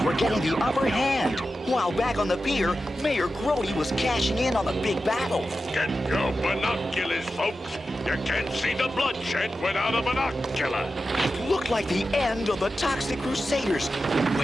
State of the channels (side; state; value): both; normal; correlation 0.92